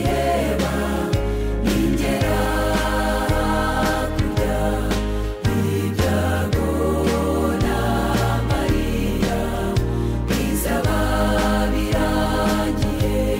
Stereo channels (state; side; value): identical; both; correlation 1.00